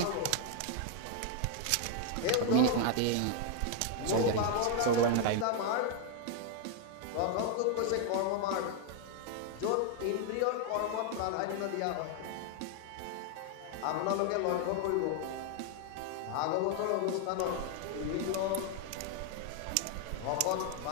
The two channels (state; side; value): different; both; correlation 0.00